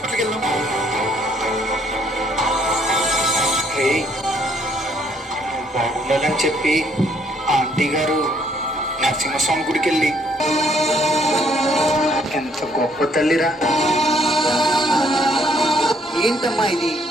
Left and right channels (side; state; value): both; normal; correlation 0.67